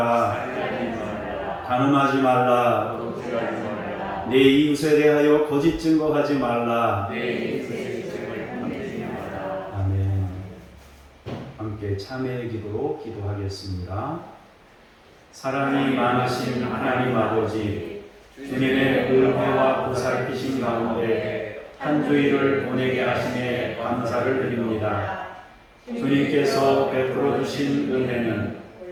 간음하지 말라. 내 이웃에 대하여 거짓 증거하지 말라. 아멘. 함께 참회의 기도로 기도하겠습니다. 사랑이 많으신 하나님 아버지, 주님의 은혜와 보살피심 가운데 한 주일을 보내게 하심에 감사를 드립니다. 주님께서 베풀어 주신 은혜는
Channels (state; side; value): identical; both; correlation 1.00